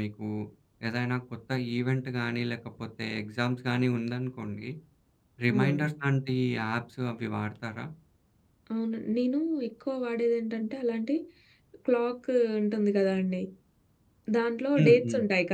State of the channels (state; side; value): identical; both; correlation 1.00